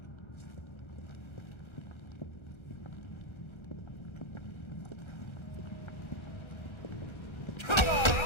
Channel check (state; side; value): late; right; 1.3 ms